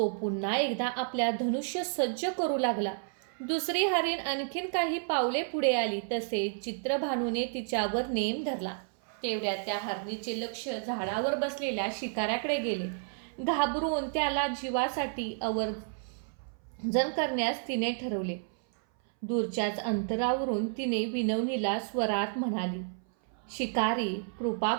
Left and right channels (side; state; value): left; silent; 57 dB below the other